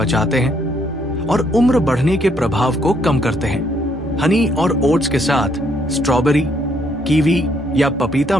हैं और उम्र बढ़ने के प्रभाव को कम करते हैं। हनी और ओट्स के साथ स्ट्रॉबेरी, कीवी या पपीता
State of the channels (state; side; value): noise; right; hum, 23 dB below the sound